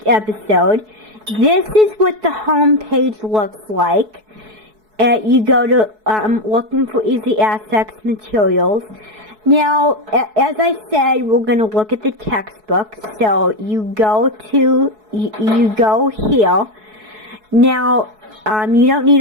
episode. This is what the home page looks like. You go to looking for Easy Access materials. Now, as I said, we're going to look at the textbook. So you go here. Now, you don't need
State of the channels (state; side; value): late; left; 4.7 ms